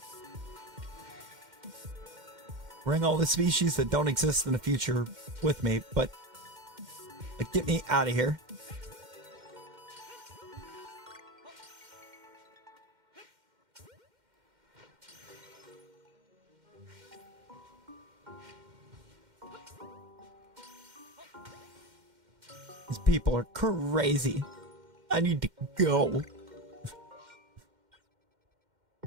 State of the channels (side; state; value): left; late; 2.1 ms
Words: Bring all the species that don't exist in the future with me, but like, get me out of here. These people are crazy. I need to go.